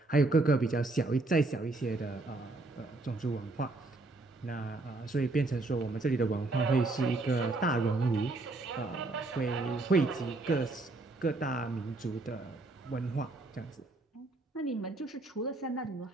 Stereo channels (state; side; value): quieter; left; 3.2 dB